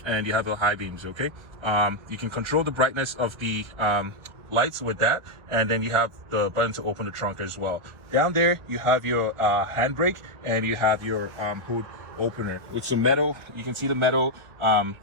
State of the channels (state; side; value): late; left; 1.2 ms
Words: and you have your high beams, okay? You can control the brightness of the lights with that, and then you have the button to open the trunk as well. Down there, you have your handbrake, and you have your hood opener with some metal. You can see the metal